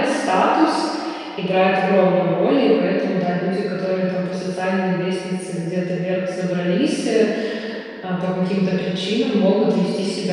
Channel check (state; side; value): identical; both; correlation 1.00